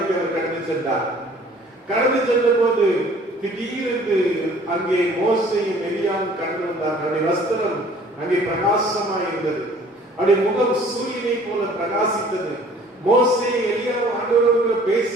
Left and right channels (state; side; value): normal; both; correlation 0.53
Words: அவர் கடந்து சென்றார். கடந்து சென்ற போது திடீரென்று அங்கே மோசேயும் எலியாவும் கடந்து வந்தார். அவருடைய வஸ்திரம் அங்கே பிரகாசமாய் இருந்தது. அவருடைய முகம் சூரியனை போல பிரகாசித்தது. மோசே எலியாவும் ஆண்டவரோடு